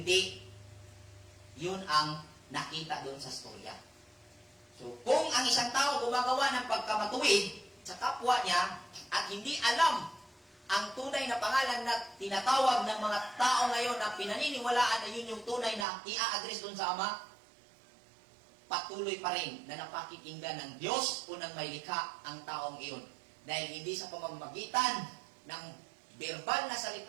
yun ang nakita doon sa storya. So, kung ang isang tao gumagawa ng pagkamatuwid sa kapwa niya at hindi alam ang tunay na pangalan na tinatawag ng mga tao ngayon na pinaniniwalaan na yun yung tunay na i-address doon sa Ama, patuloy pa rin na napakikinggan ng Diyos o ng may likha ang taong iyon. Dahil hindi sa pamamagitan ng verbal na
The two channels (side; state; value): left; drops out; at 15.9 s